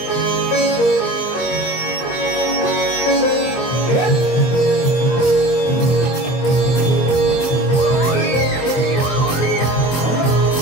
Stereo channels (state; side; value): late; right; 23 ms